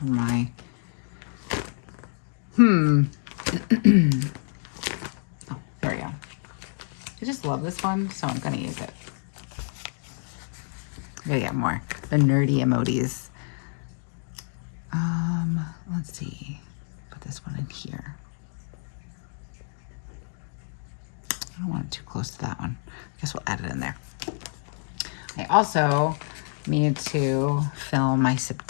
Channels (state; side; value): silent; right; 58 dB below the other